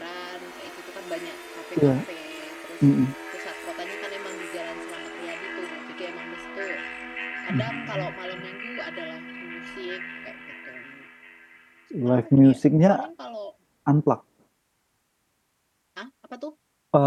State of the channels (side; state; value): both; identical; correlation 1.00